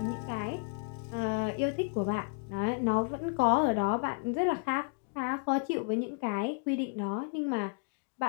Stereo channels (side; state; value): right; quieter; 38.0 dB